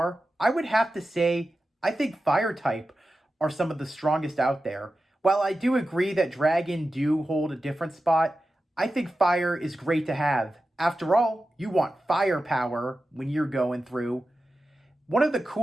I would have to say I think Fire type are some of the strongest out there. While I do agree that Dragon do hold a different spot, I think Fire is great to have. After all, you want firepower when you're going through. One of the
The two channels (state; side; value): normal; both; correlation 0.92